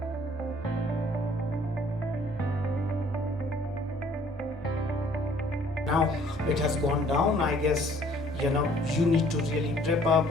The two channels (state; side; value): normal; both; correlation 0.58